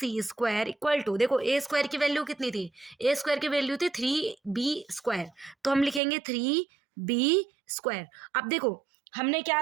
इक्वल टू, देखो a² की वैल्यू कितनी थी? a² की वैल्यू थी 3b², तो हम लिखेंगे 3b²। अब देखो हमने क्या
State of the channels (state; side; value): drops out; left; at 6.0 s